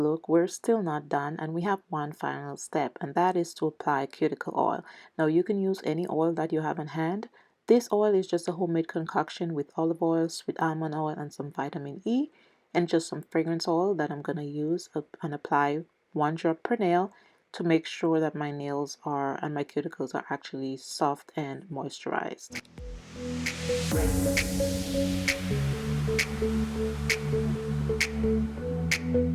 we're still not done, and we have one final step, and that is to apply cuticle oil. Now you can use any oil that you have in hand. This oil is just a homemade concoction with olive oil, sweet almond oil, and some vitamin E, and just some fragrance oil that I'm going to use and apply 1 drop per nail to make sure that my nails are and my cuticles are actually soft and moisturized.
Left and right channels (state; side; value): identical; both; correlation 1.00